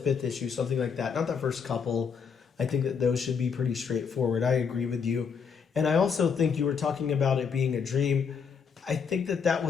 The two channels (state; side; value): quieter; right; 6.2 dB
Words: issue, something like that. Not the first couple. I think that those should be pretty straightforward. I agree with you. And I also think you were talking about it being a dream. I think that that